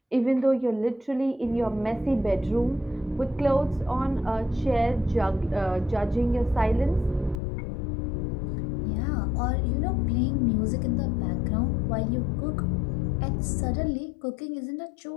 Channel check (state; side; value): drops out; right; at 7.4 s